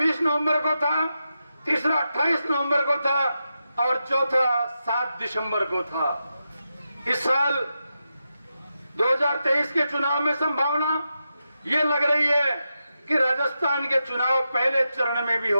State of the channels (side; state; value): both; inverted; correlation -0.88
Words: नवंबर को था, तीसरा 28 नवंबर को था, और चौथा 7 दिसंबर को था। इस साल 2023 के चुनाव में संभावना ये लग रही है कि राजस्थान के चुनाव पहले चरण में भी